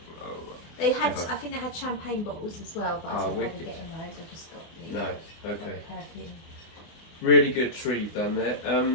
They had, I think they had champagne bottles as well, but I didn't bother getting those. I just got the perfume. really good tree you've done there.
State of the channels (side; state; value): right; late; 24 ms